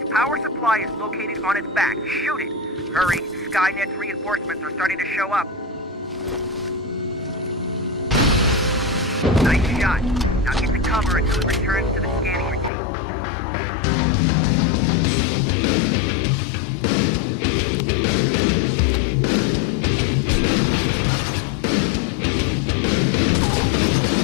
power supply is located on its back. Shoot it! Hurry, Skynet's reinforcements are starting to show up. Nice shot. Now get to cover until it returns to the scanning routine.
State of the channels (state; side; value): drops out; right; at 12.7 s